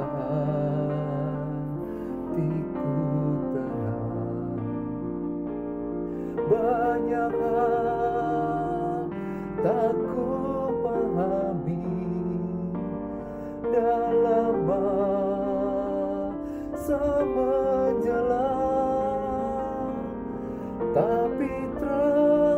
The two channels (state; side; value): identical; both; correlation 1.00